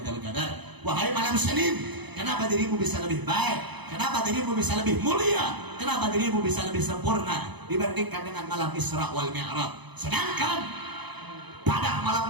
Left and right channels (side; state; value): left; late; 0.99 ms